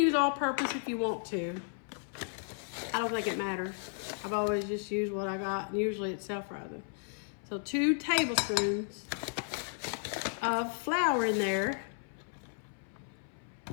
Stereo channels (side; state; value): right; silent; 55 dB below the other